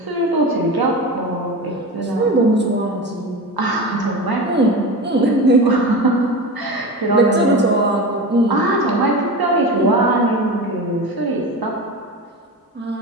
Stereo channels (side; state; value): both; normal; correlation 0.26